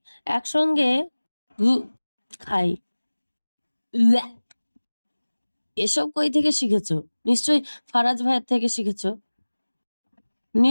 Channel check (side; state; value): both; inverted; correlation -1.00